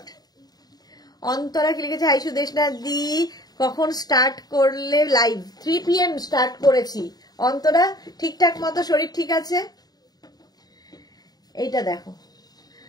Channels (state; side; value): late; right; 0.19 ms